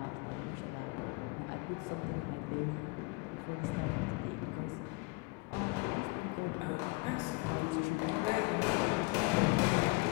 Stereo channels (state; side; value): quieter; right; 26.5 dB